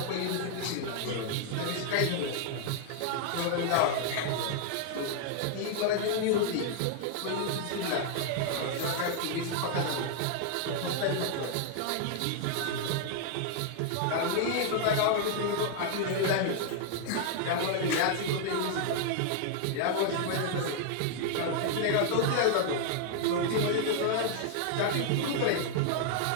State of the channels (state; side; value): different; both; correlation 0.00